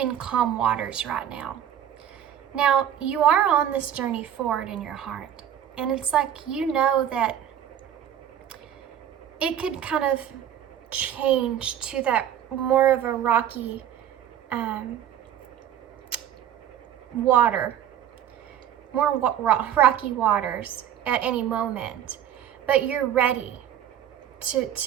calm waters right now. Now, you are on this journey forward in your heart. And it's like, that it could kind of change to that more of a rocky rocky waters at any moment. But you're ready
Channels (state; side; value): quieter; left; 10.2 dB